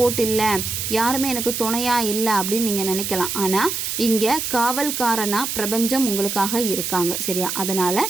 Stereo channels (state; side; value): noise; right; hiss, 3 dB below the sound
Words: இல்லை, யாருமே எனக்கு துணையாக இல்லை அப்படின்னு நீங்கள் நினைக்கலாம். ஆனால் இங்கே காவல்காரனாக பிரபஞ்சம் உங்களுக்காக இருக்காங்க. சரியா, அதனால்